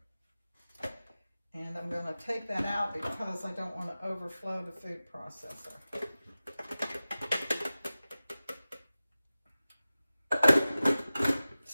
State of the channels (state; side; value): inverted; both; correlation -0.96